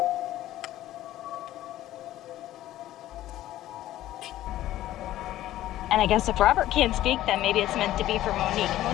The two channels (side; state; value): right; quieter; 14.1 dB